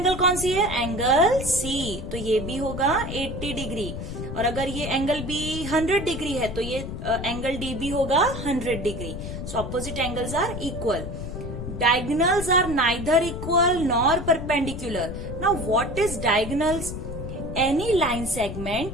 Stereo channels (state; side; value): noise; left; rumble, 7 dB below the sound